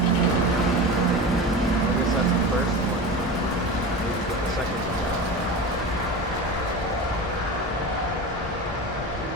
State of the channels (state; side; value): normal; both; correlation 0.29